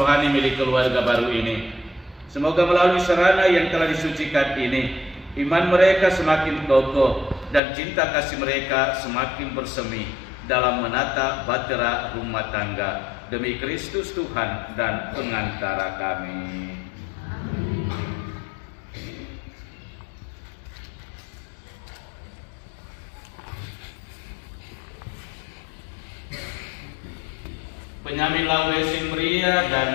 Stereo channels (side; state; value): right; drops out; at 7.6 s